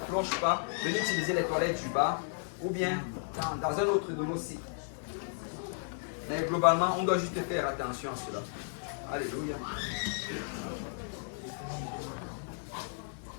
pas, venez utiliser les toilettes du bas, ou bien dans un autre de nos sites. Mais globalement, on doit juste faire attention à cela. Alléluia.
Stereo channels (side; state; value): right; silent; digital silence